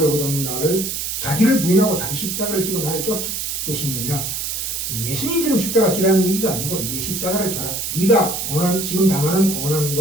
나를 자기를 부인하고 자기 십자가를 지고 나를 쫓을 것이니라. 예수님처럼 십자가 지라는 얘기가 아니고 내 십자가를 져라. 네가 지금 당하는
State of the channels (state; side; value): noise; right; hiss, 3 dB below the sound